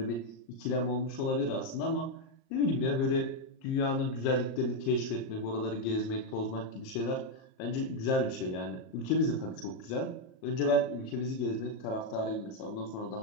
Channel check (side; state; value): right; late; 38 ms